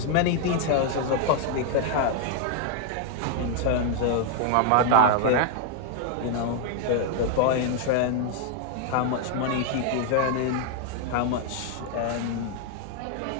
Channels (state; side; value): different; both; correlation 0.00